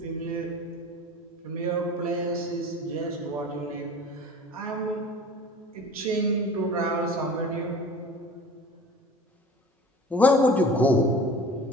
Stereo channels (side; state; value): both; normal; correlation 0.41